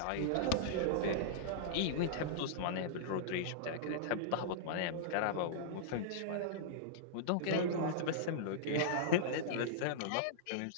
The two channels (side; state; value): both; different; correlation -0.02